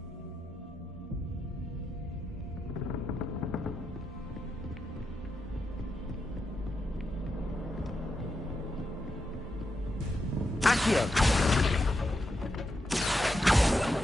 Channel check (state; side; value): normal; both; correlation 0.85